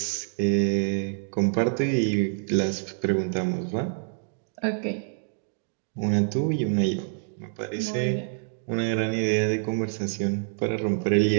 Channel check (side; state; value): left; silent; digital silence